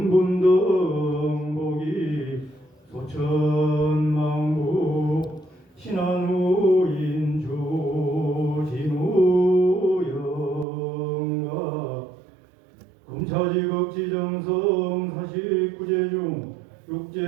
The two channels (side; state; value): left; drops out; at 10.7 s